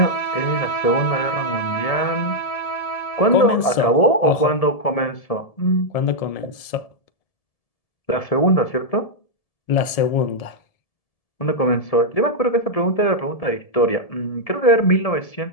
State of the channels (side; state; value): right; late; 1.7 ms